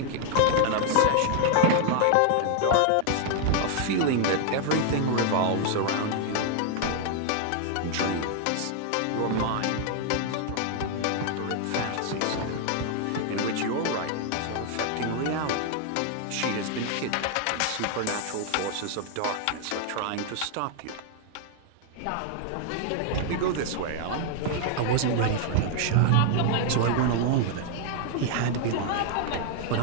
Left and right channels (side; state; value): both; different; correlation 0.00